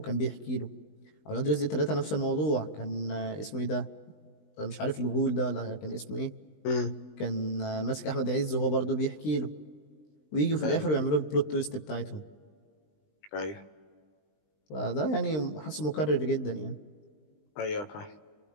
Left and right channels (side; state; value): right; late; 20 ms